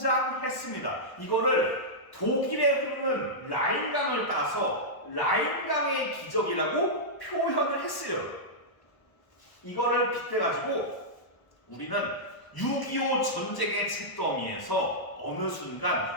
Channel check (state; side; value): late; right; 1.1 ms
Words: 이거를 독일에 흐르는 라인강을 따서 라인강의 기적이라고 표현을 했어요. 이거를 빗대가지고 우리는 6.25 전쟁의 잿더미에서 어느